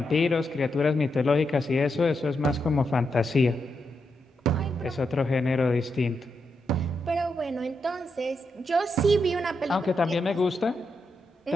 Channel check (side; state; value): both; normal; correlation 0.84